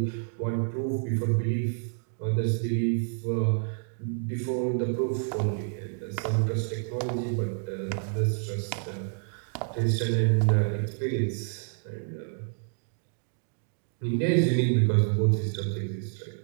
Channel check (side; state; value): left; silent; digital silence